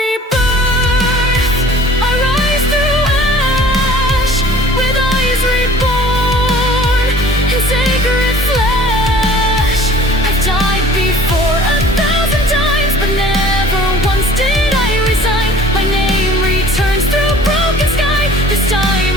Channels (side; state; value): both; normal; correlation 0.49